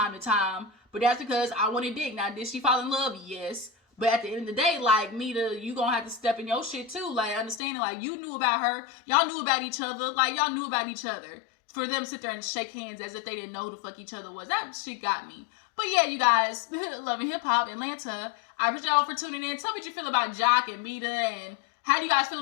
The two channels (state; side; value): drops out; right; at 7.6 s